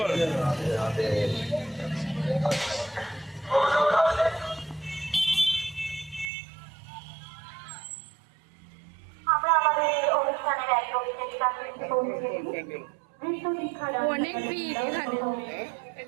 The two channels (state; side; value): drops out; left; at 6.3 s